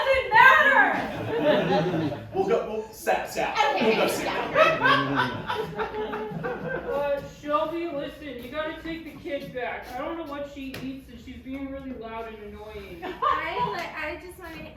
matter. We'll south. Okay, We'll go yeah. south. Shelby, listen, you gotta take the kid back. I don't know what she eats and she's being really loud and annoying. I just want to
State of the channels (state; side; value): identical; both; correlation 1.00